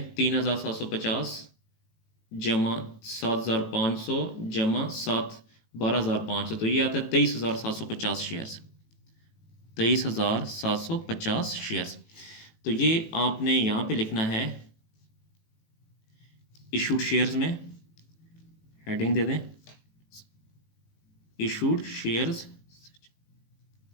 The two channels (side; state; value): right; late; 18 ms